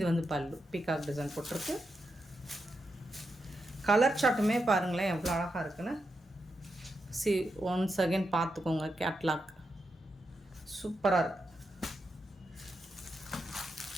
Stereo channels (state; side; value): normal; both; correlation 0.86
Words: வந்து பல்லு பீகாக் டிசைன் போட்டிருக்கு. கலர் சார்ட்டுமே பாருங்களேன் எவ்வளோ அழகாக இருக்குன்னு. ஒன்ஸ் அகெயின் பார்த்துக்கோங்க. கேட்லாக் சூப்பராக இருக்குது.